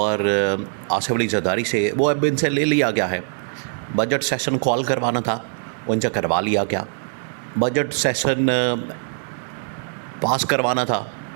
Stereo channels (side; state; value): left; silent; digital silence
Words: आसिफ अली जरदारी से, वो अब इनसे ले लिया गया है। बजट सेशन कॉल करवाना था, उनसे करवा लिया गया। बजट सेशन पास करवाना था,